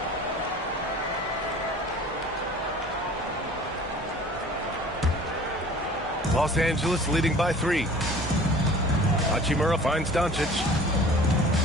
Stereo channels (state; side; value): normal; both; correlation 0.46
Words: Los Angeles leading by 3. Hachimura finds Doncic.